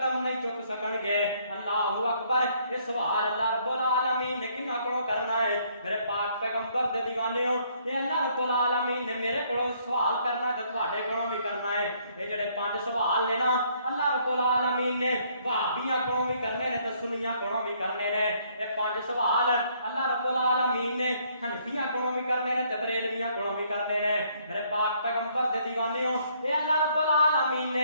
نہیں چک سکن گے اللہ اکبر یہ سوال اللہ رب العالمین نے کنا کڑوں کرنا ہے میرے پاک پیغمبر دے دیوانیوں یہ اللہ رب العالمین نے میرے کڑوں سوال کرنا ہے تواڈے کڑوں بھی کرنا ہے یہ جڑے 5 سوال نے نا اللہ رب العالمین نے وہابیاں کڑوں بھی کرنے نے تے سنیاں کڑوں بھی کرنے نے یہ 5 سوال اللہ رب العالمین نے حنفیاں کڑوں بھی کرنے نے تے بریلویاں کڑوں بھی کرنے نے میرے پاک پیغمبر دے دیوانیوں یہ اللہ رب العالمین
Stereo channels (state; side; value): inverted; both; correlation -0.66